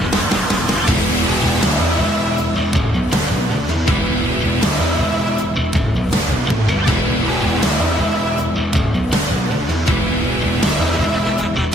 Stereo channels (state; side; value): normal; both; correlation 0.69